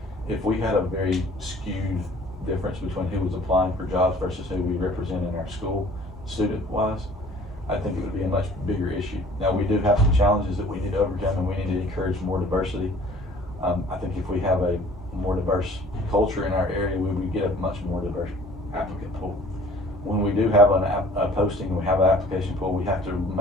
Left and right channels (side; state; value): both; normal; correlation 0.51